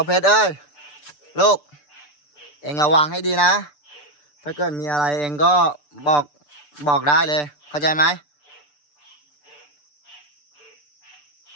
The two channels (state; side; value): late; right; 6.8 ms